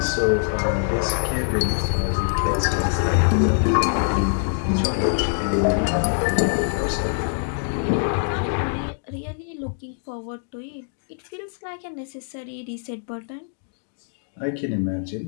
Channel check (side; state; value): right; silent; digital silence